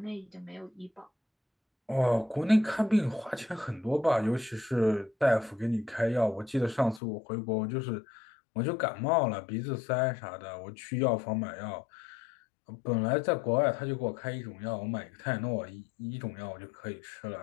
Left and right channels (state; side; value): drops out; right; at 7.0 s